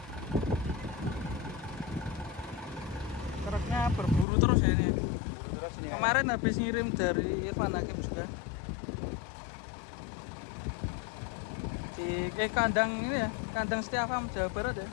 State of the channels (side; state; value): right; drops out; at 4.2 s